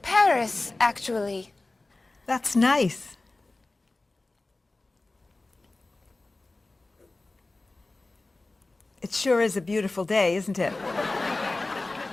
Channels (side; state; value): right; quieter; 3.1 dB